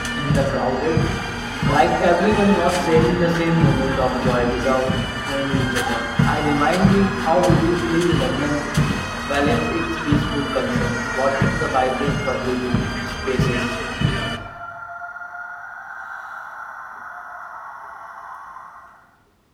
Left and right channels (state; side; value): identical; both; correlation 1.00